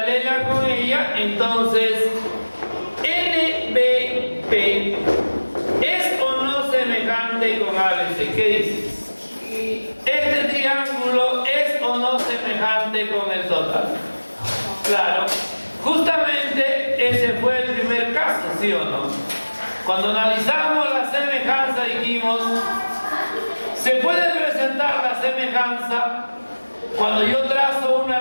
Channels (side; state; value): both; inverted; correlation -1.00